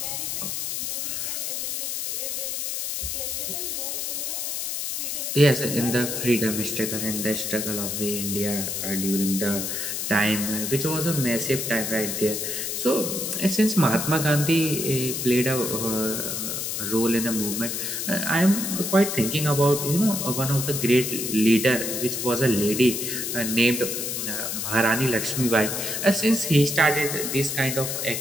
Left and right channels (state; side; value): noise; left; hiss, 3 dB below the sound